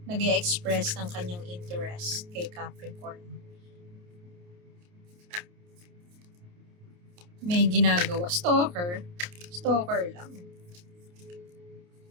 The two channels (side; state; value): left; late; 28 ms